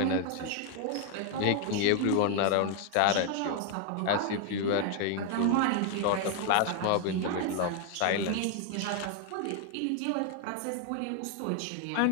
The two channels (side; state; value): both; different; correlation 0.00